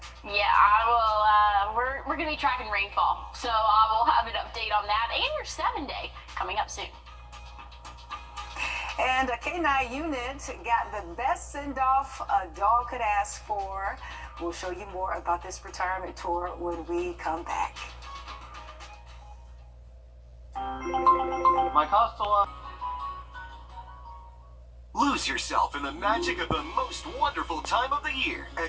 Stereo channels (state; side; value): identical; both; correlation 1.00